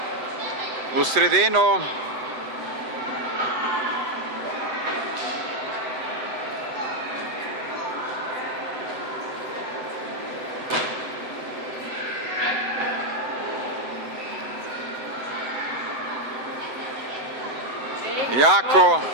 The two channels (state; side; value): late; left; 7.8 ms